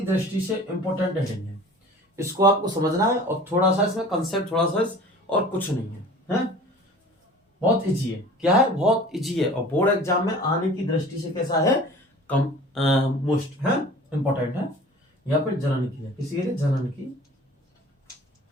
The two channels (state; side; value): normal; both; correlation 0.44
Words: दृष्टि से इंपॉर्टेंट हेडिंग है। इसको आपको समझना है और थोड़ा सा इसमें कंसेप्ट थोड़ा सा और कुछ नहीं है, हैं? बहुत इजी है। क्या है? बहुत इजी है। और बोर्ड एग्जाम में आने की दृष्टि से कैसा है? कम मोस्ट है, इंपॉर्टेंट है। यहाँ पर जनन की है। किसी के लिए? जनन की